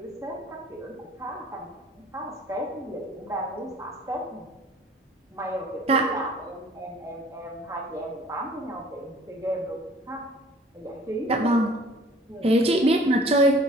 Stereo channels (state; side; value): normal; both; correlation 0.51